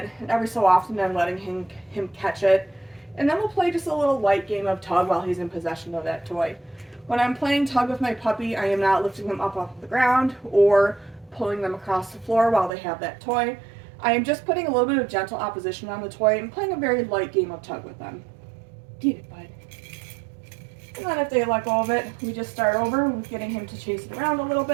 and every so often I'm letting him catch it. And then we'll play just a little light game of tug while he's in possession of that toy. When I'm playing tug with my puppy, I am not lifting them up off the ground or pulling them across the floor while they have that toy. I am just putting a little bit of gentle opposition on the toy and playing a very light game of tug with them. Get it, bud. And then if they let go of it, we just start over with getting him to chase it around a little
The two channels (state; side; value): drops out; left; at 12.7 s